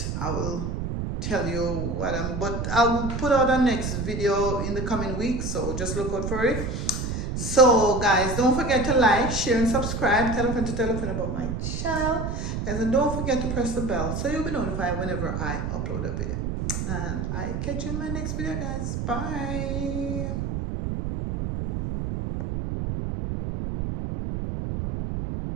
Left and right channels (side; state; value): right; noise; rumble, 3 dB below the sound